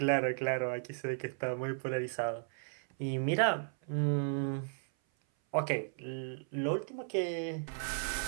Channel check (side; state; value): left; silent; 55 dB below the other